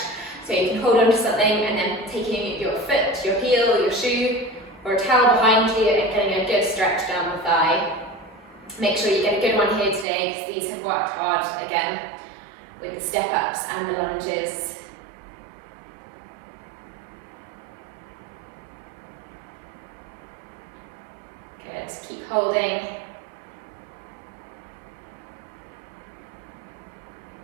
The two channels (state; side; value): drops out; left; at 10.1 s